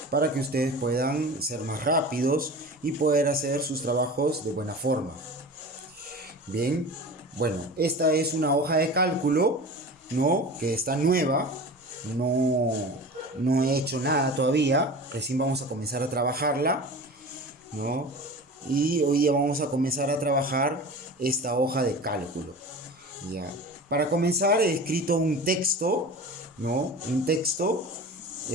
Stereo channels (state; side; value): normal; both; correlation 0.35